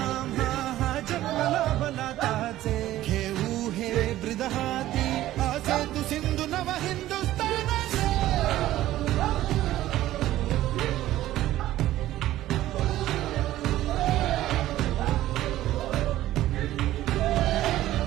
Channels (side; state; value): left; quieter; 14.5 dB